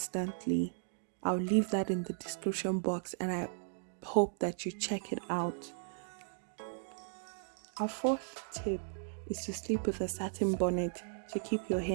I'll leave that in the description box, and I hope that you check it out. Our fourth tip is to sleep with a satin bonnet to keep your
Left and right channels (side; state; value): left; silent; digital silence